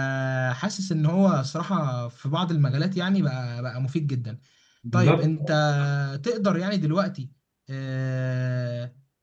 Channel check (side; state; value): both; identical; correlation 1.00